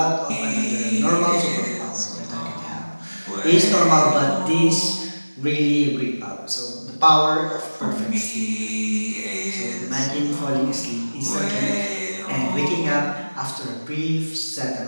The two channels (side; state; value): both; inverted; correlation -1.00